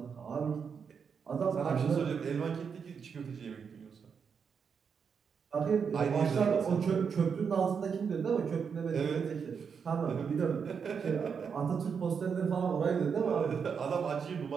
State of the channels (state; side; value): quieter; left; 6.4 dB